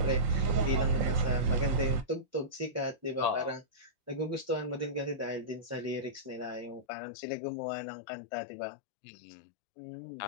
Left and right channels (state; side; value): drops out; right; at 6.9 s